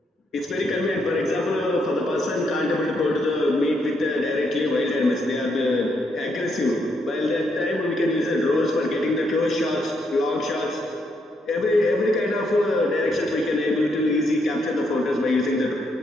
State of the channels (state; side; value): normal; both; correlation 0.77